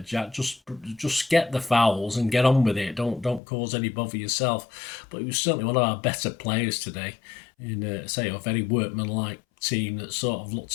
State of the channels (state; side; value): drops out; right; at 3.4 s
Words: Jack. Just get the fouls and get on with it. Don't cause any bother yourself. But he was certainly one of our better players today. In a very workmanlike team that sort of